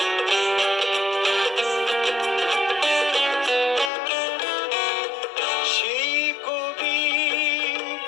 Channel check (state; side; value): drops out; right; at 3.9 s